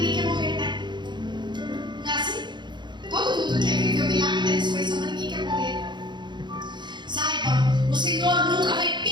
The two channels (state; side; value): late; left; 0.22 ms